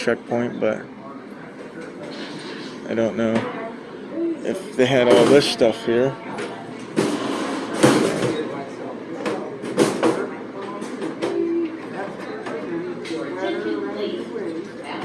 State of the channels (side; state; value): both; identical; correlation 1.00